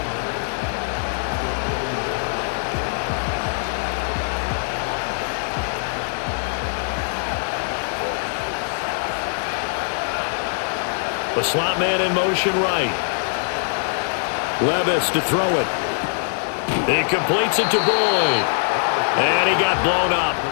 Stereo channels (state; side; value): silent; right; 64 dB below the other